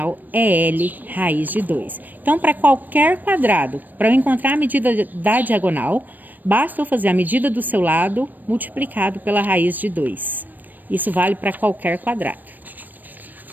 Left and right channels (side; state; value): left; late; 0.088 ms